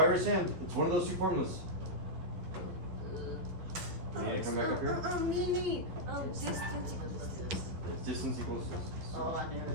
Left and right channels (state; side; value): late; left; 11 ms